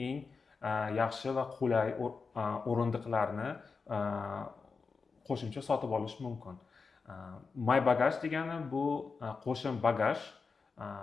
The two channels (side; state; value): right; quieter; 4.8 dB